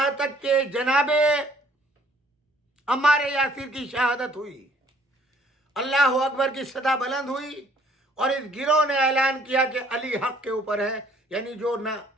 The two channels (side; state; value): both; normal; correlation 0.60